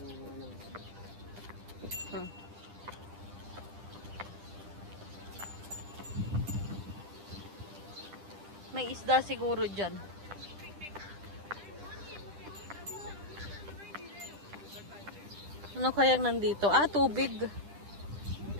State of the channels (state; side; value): late; left; 10 ms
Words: May isda siguro dyan. Ano kayang nandito? Ah, tubig.